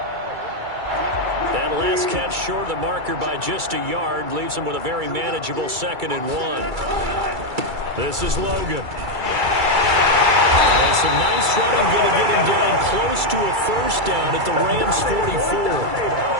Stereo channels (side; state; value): left; late; 2.3 ms